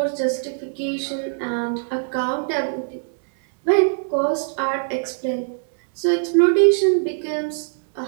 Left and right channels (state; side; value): silent; left; 64 dB below the other